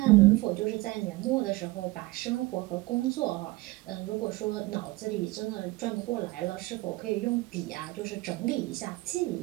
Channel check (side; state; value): left; quieter; 21.1 dB